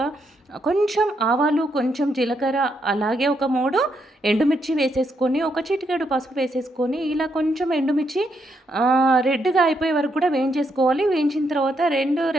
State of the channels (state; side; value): normal; both; correlation 0.78